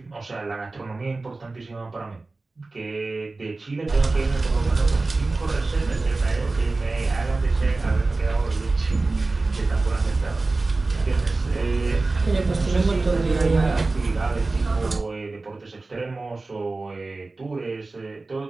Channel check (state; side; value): quieter; left; 3.4 dB